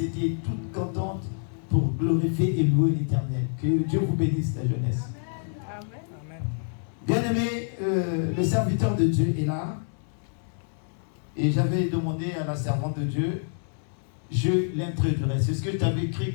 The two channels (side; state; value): right; silent; digital silence